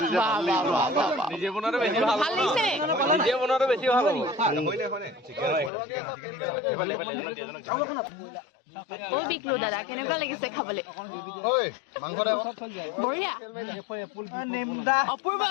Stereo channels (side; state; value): right; drops out; at 5.7 s